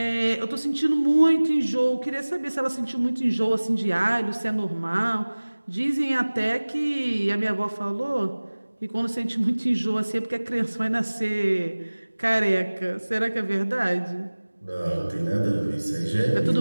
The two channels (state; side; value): inverted; both; correlation -1.00